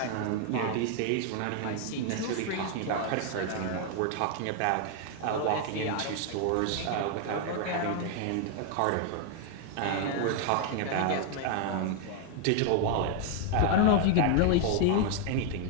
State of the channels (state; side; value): different; both; correlation 0.00